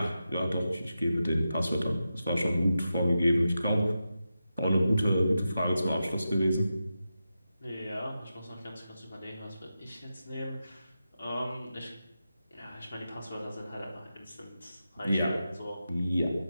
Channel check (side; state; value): both; inverted; correlation -0.90